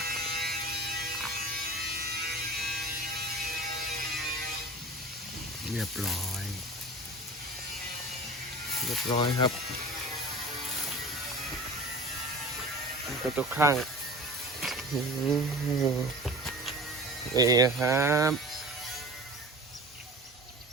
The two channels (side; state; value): both; normal; correlation 0.37